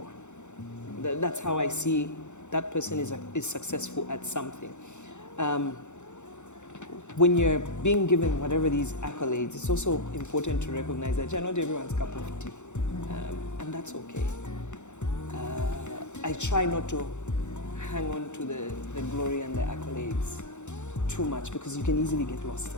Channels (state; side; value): late; right; 0.84 ms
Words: That's how I see that person is successful at something. When you're being given whatever these accolades, it's also important to recognize that you're not everyone's cup of tea, and that's okay. I try not to hang on to the glory and the accolades too much, because you can easily get lost